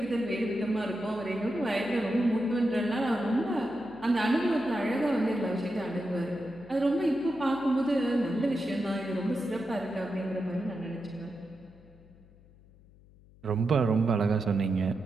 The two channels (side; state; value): left; noise; hum, 25 dB below the sound